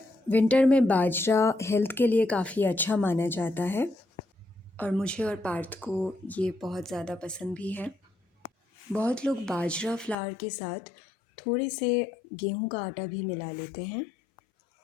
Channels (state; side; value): drops out; right; at 10.2 s